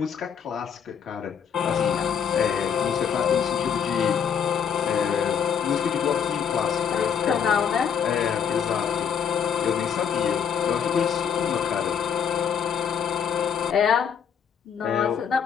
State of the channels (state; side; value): quieter; right; 7.5 dB